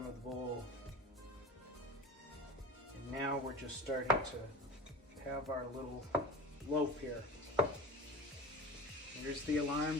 of the bowl. And now we're just starting to have our little loaf here. Here's the alarm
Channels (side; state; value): both; normal; correlation 0.33